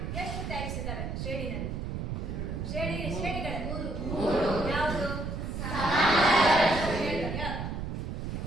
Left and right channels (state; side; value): noise; right; rumble, 4 dB below the sound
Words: ಎಷ್ಟು ಟೈಪ್ಸ್ ಇದಾವೆ ಶ್ರೇಣಿನಲ್ಲಿ? ಶ್ರೇಣಿಗಳು 3. ಯಾವುದು?